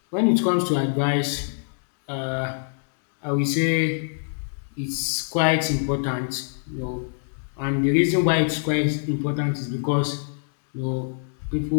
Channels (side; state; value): right; silent; digital silence